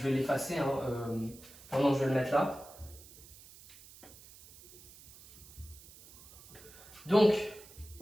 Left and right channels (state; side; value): noise; right; hiss, 20 dB below the sound